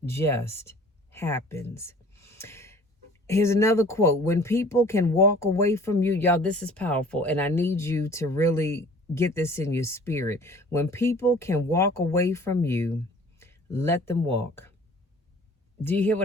just happens. Here's another quote. When people can walk away from you, y'all, this is powerful, and I need you to really get this in your spirit. When people can walk away from you, let them walk. Do you hear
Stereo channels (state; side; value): normal; both; correlation 0.49